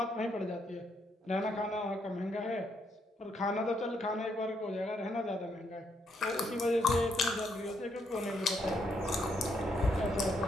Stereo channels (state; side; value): normal; both; correlation 0.75